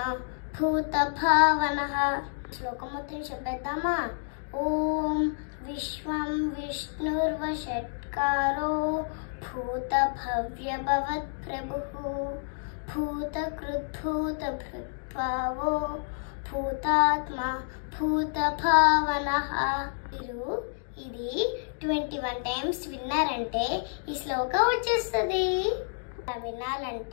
భూత భావనః. శ్లోకం మొత్తం చెప్పేద్దామా? ఓం విశ్వం విష్ణుర్వషట్కారో భూత భవ్య భవత్ ప్రభుః భూత కృత్ భూత భృత్ భావో భూతాత్మ భూత భావనః. మీరు ఇది 21 టైమ్స్ విన్నారంటే ఈ శ్లోకం వచ్చేస్తుంది.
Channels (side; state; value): right; silent; digital silence